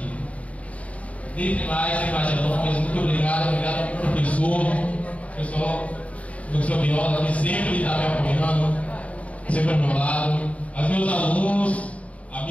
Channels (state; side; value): late; right; 0.067 ms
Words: Dentre mais, sem mais delongas, muito obrigado professor Viola, que sempre está me apoiando, sempre ao meu lado, aos meus alunos,